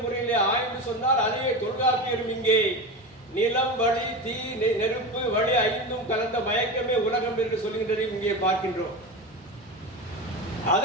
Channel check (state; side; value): normal; both; correlation 0.24